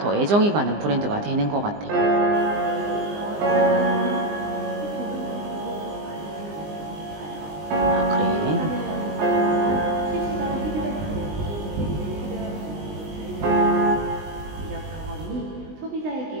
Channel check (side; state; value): left; late; 20 ms